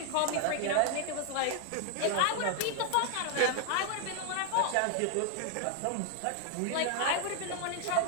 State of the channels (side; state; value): both; different; correlation 0.00